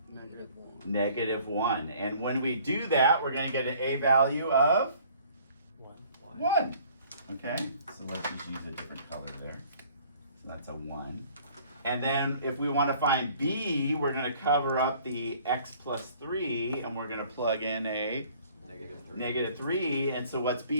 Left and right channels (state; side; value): inverted; both; correlation -0.55